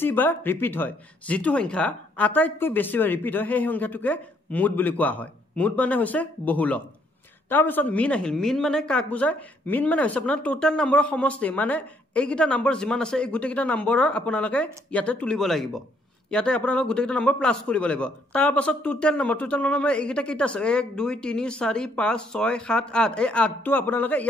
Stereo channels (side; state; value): both; normal; correlation 0.69